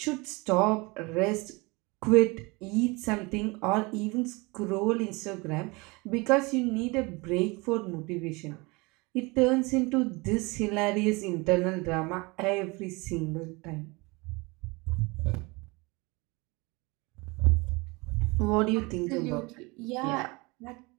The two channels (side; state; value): left; quieter; 25.9 dB